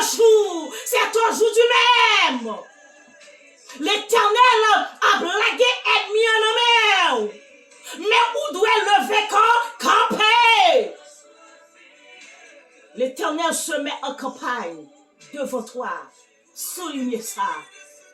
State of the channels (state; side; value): identical; both; correlation 1.00